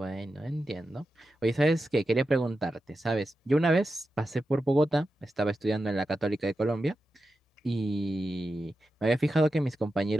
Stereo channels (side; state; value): both; normal; correlation 0.90